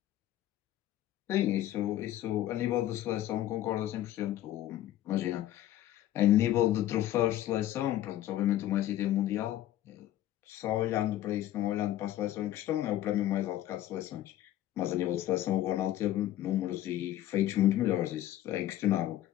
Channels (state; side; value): quieter; right; 13.5 dB